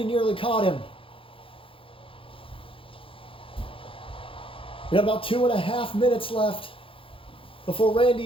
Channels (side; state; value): right; late; 0.26 ms